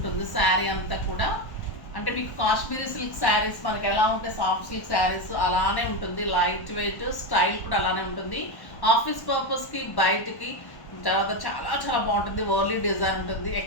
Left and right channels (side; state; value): right; late; 1.1 ms